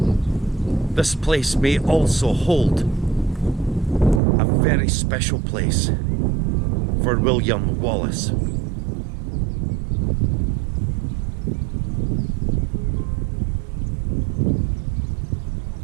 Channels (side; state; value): left; drops out; at 4.2 s